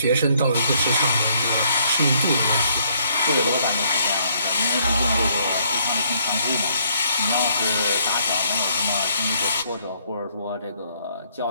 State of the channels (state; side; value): inverted; both; correlation -0.68